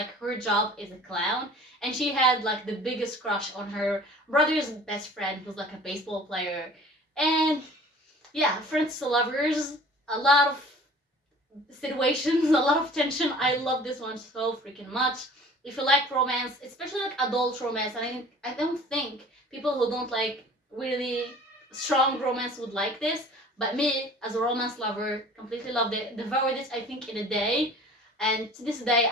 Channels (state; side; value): normal; both; correlation 0.47